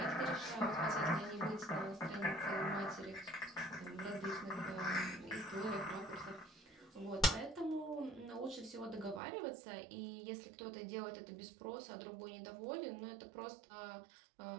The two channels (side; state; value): left; drops out; at 9.2 s